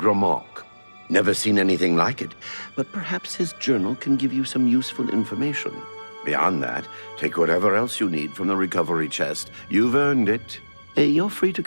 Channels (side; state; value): both; inverted; correlation -1.00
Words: Never seen anything like it, but perhaps his journal can give you some useful information. Beyond that, take whatever else you need from the recovery chest. You've earned it. You're free to